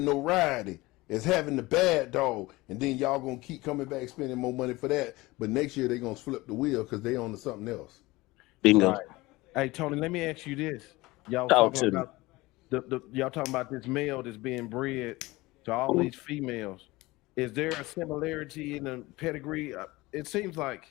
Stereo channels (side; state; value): right; quieter; 20.7 dB